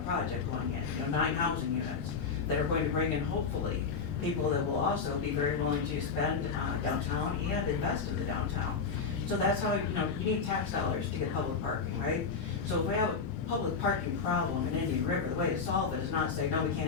project going in, 9 housing units that are going to bring in, hopefully, people that will also be very willing to spend downtown and invest in the downtown. So that's how, you need tax dollars to get public parking, right? So if we have a public parking problem in Indian River, the way to solve it is not say, no, we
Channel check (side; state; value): right; quieter; 5.4 dB